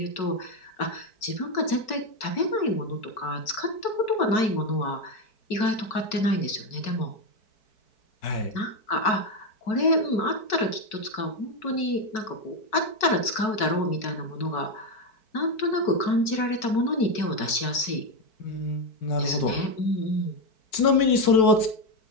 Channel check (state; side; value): late; right; 4.6 ms